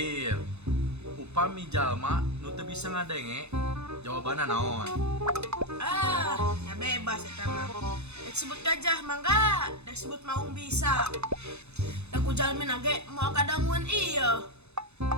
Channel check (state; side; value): late; left; 0.81 ms